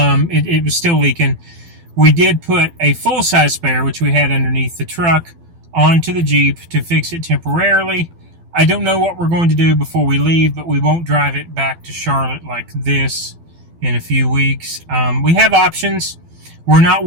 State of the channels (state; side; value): late; left; 12 ms